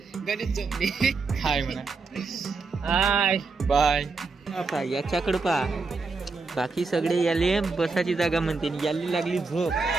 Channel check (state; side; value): quieter; left; 4.2 dB